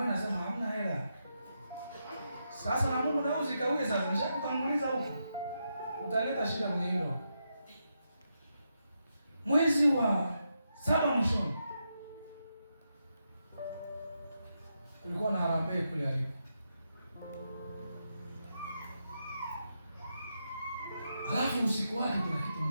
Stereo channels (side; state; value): both; inverted; correlation -0.84